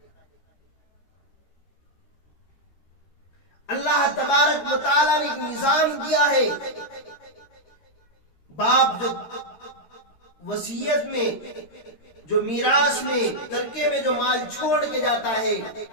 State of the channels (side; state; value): right; late; 13 ms